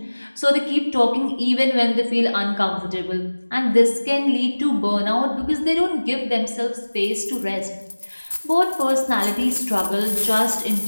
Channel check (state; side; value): inverted; both; correlation -1.00